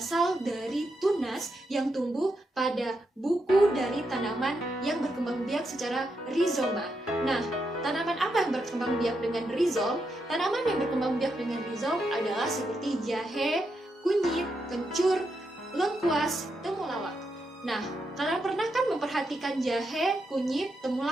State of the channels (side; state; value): both; normal; correlation 0.83